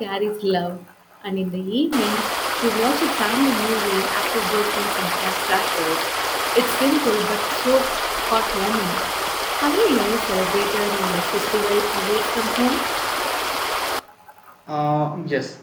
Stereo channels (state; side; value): identical; both; correlation 1.00